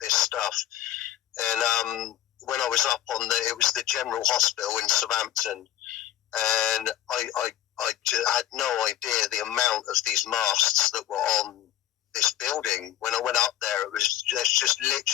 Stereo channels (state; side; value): quieter; right; 12.5 dB